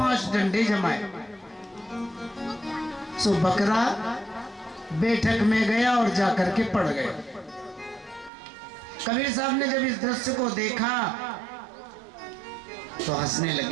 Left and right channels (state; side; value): drops out; left; at 8.3 s